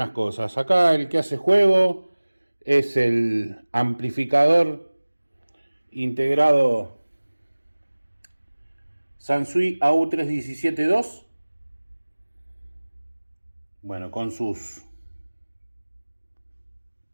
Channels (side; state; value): both; inverted; correlation -1.00